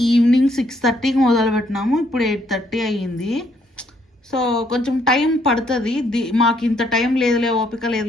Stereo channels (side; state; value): both; normal; correlation 0.69